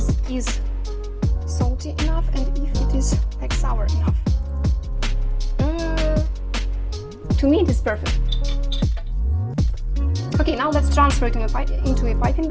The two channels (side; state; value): both; identical; correlation 1.00